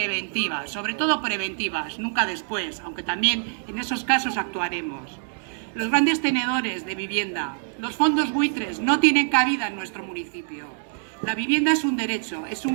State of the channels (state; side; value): silent; left; digital silence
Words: sobre todo preventivas, nunca después, aunque también en esos casos actuaremos. Los grandes tenedores de vivienda, los fondos buitres no tienen cabida en nuestro municipio. La vivienda es un derecho, es